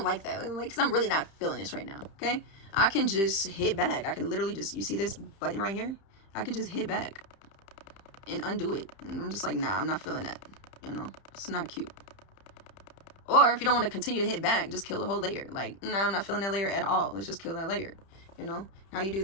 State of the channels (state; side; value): late; right; 30 ms